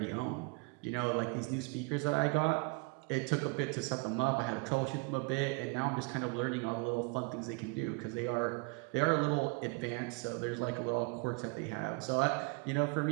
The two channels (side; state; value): left; quieter; 30.6 dB